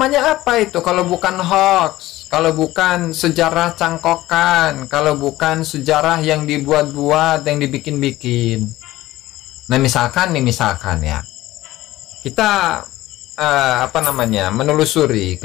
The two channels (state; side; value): quieter; right; 16.6 dB